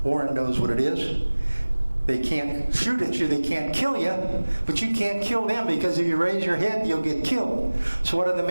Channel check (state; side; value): inverted; both; correlation -1.00